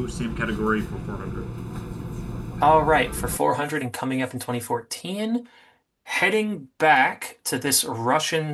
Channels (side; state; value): both; identical; correlation 1.00